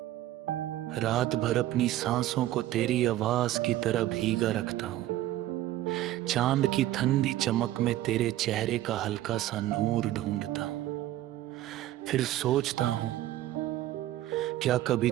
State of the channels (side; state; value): left; quieter; 14.3 dB